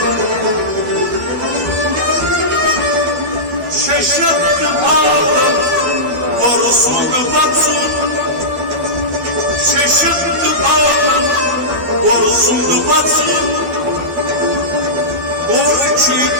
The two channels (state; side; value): late; left; 12 ms